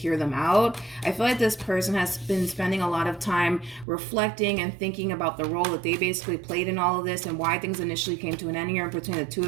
them out. I feel like this person has been spending a lot of time reflecting and thinking about the role that they basically played in all of this and why things initially came to an end here between the two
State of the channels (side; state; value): left; drops out; at 3.9 s